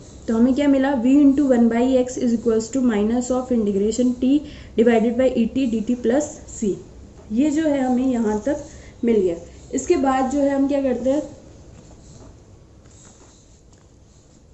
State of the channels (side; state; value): both; identical; correlation 1.00